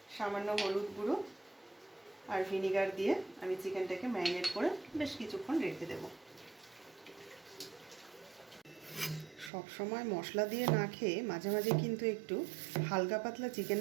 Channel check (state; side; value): drops out; left; at 9.5 s